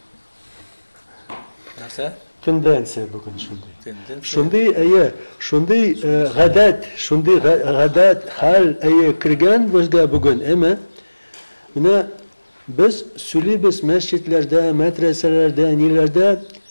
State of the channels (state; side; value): inverted; both; correlation -1.00